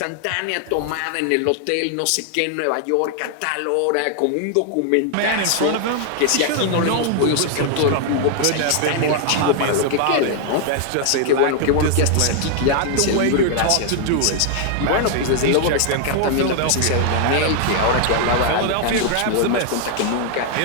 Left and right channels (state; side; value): different; both; correlation 0.00